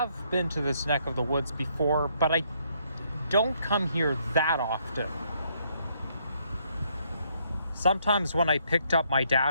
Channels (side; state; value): both; inverted; correlation -0.71